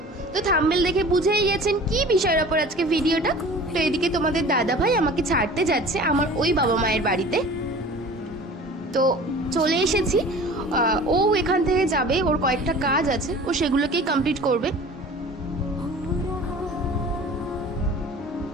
তো থাম্বনেল দেখে বুঝেই গেছেন কি বিষয়ের ওপর আজকে ভিডিওটা। তো এদিকে তোমাদের দাদা ভাই আমাকে ছাড়তে যাচ্ছে আমার ওই বাবা মায়ের বাড়িতে। তো চলে এসেছি। ও এখান থেকে যাবে, ওর কয়েকটা কাজ আছে, ও সেগুলোকেই কমপ্লিট করবে।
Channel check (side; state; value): both; normal; correlation 0.42